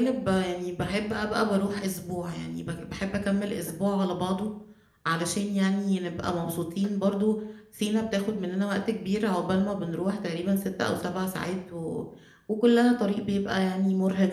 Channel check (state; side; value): identical; both; correlation 1.00